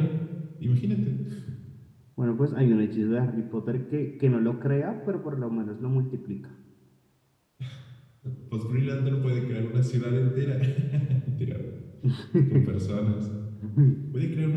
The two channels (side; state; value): both; identical; correlation 1.00